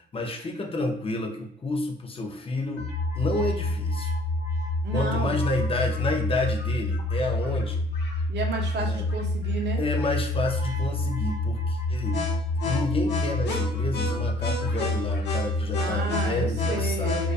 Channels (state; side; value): normal; both; correlation 0.57